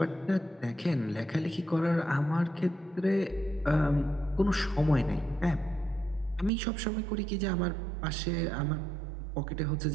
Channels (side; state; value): left; drops out; at 6.5 s